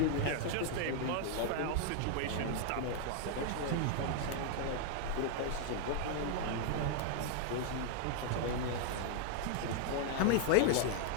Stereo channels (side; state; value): both; different; correlation 0.00